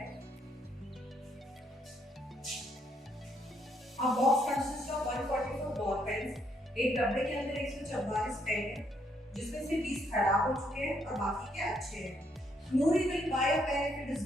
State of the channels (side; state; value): both; normal; correlation 0.72